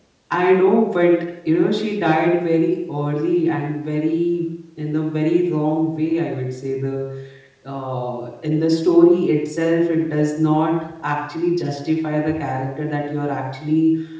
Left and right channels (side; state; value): both; identical; correlation 1.00